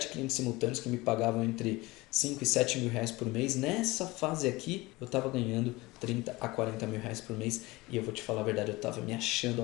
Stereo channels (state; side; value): quieter; right; 21.5 dB